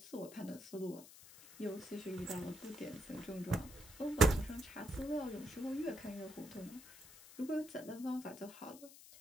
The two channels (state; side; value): noise; left; hiss, 17 dB below the sound